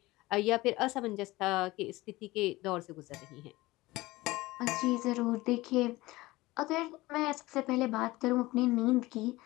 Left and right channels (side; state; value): right; quieter; 19.7 dB